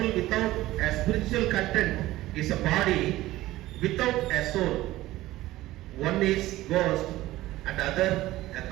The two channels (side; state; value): left; quieter; 16.6 dB